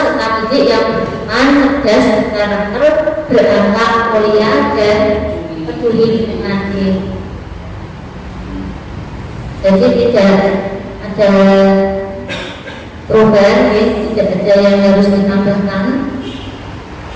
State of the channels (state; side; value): identical; both; correlation 1.00